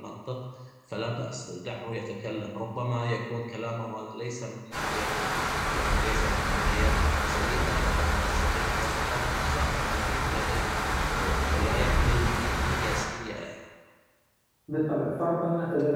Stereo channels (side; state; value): both; identical; correlation 1.00